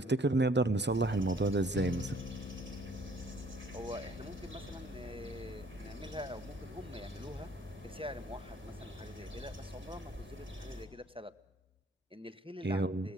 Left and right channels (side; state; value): both; normal; correlation 0.59